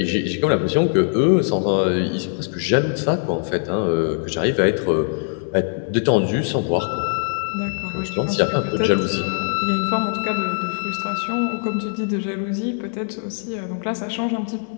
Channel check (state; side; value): silent; right; digital silence